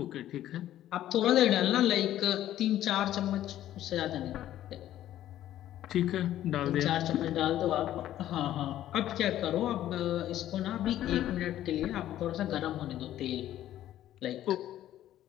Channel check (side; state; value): right; quieter; 12.7 dB